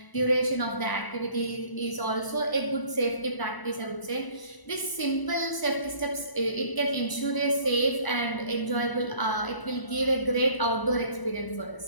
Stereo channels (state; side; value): late; right; 1.0 ms